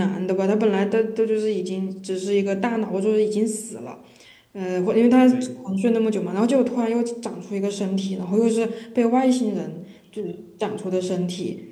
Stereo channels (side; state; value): both; identical; correlation 1.00